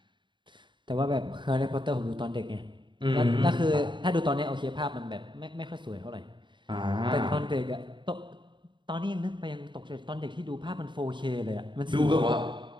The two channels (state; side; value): late; left; 0.23 ms